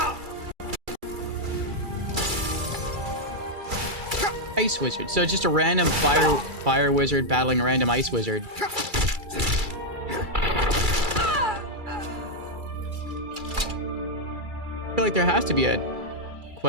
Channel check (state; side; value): late; left; 2.3 ms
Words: Ice wizard. So it's just a random fire wizard battling a random ice wizard. I feel like there has to be a